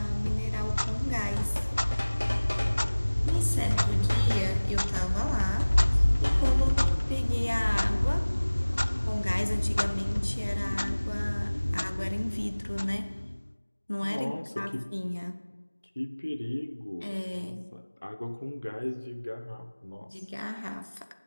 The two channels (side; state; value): both; inverted; correlation -1.00